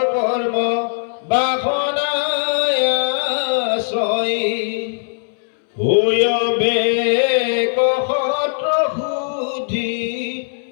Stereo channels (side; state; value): right; silent; 67 dB below the other